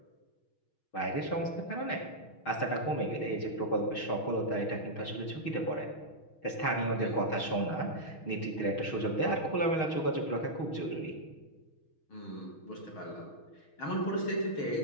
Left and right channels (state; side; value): late; right; 6.3 ms